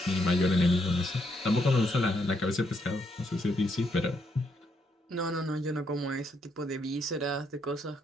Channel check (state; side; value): normal; both; correlation 0.76